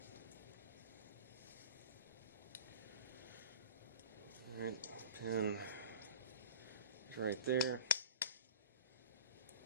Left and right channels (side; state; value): both; inverted; correlation -0.39